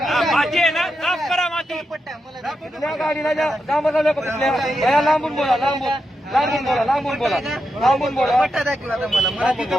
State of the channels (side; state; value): both; normal; correlation 0.86